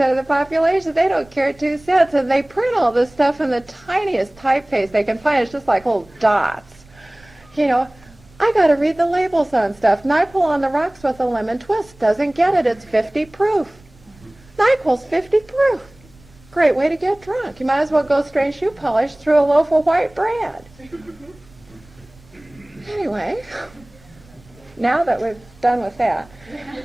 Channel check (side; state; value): right; noise; rumble, 27 dB below the sound